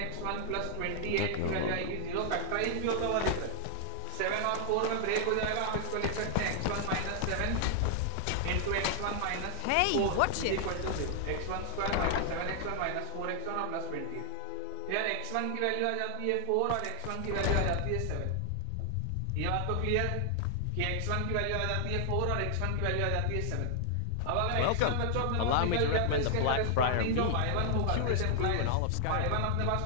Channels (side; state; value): both; different; correlation 0.00